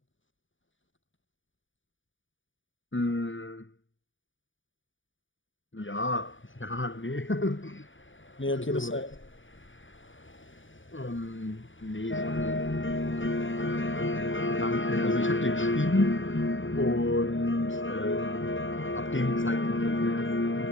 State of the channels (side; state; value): right; late; 0.57 ms